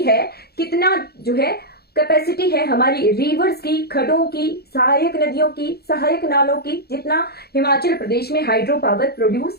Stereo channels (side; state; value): right; late; 0.46 ms